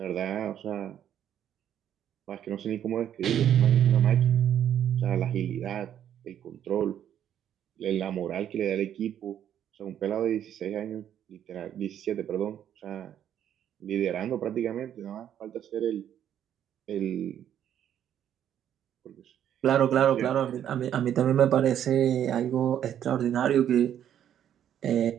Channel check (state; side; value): quieter; left; 10.1 dB